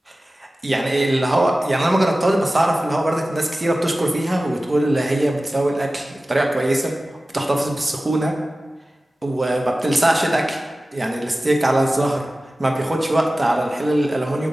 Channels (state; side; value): normal; both; correlation 0.96